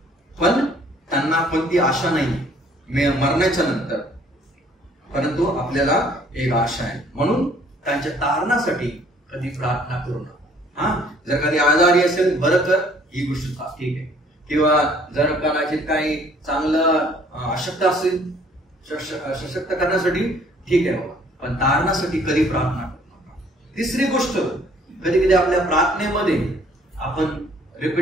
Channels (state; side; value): normal; both; correlation 0.59